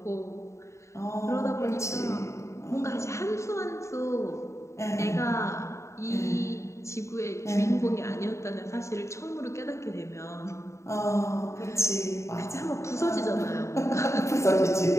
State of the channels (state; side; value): late; right; 0.14 ms